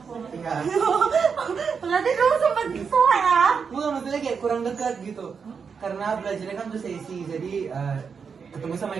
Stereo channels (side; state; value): left; quieter; 6.0 dB